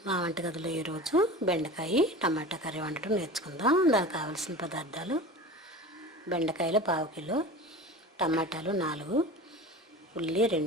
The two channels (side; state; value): both; normal; correlation 0.34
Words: మా వంటగదిలో ఈరోజు బెండకాయ టమాటా కర్రీ వండటం నేర్చుకుందాం. దానికి కావాల్సిన పదార్థాలు: బెండకాయలు 1/2 కిలో, టమాటాలు 4, ఉల్లి